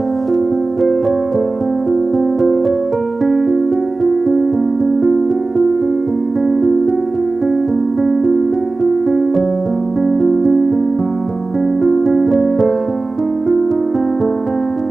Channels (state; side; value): quieter; left; 3.4 dB